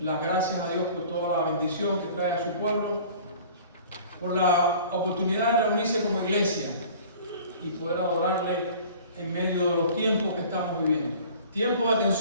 gracias a Dios por toda la bendición que trae a su pueblo, por la oportunidad de reunirse como iglesia y poder adorarle en medio de los tiempos que estamos viviendo. Tiempos de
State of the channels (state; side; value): inverted; both; correlation -0.46